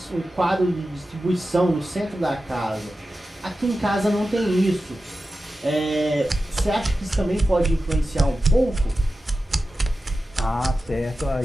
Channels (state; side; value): normal; both; correlation 0.93